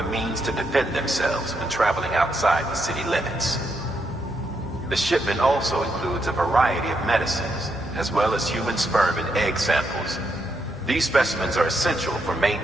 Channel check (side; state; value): both; normal; correlation 0.80